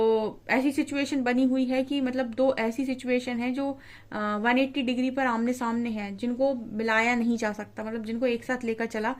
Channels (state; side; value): identical; both; correlation 1.00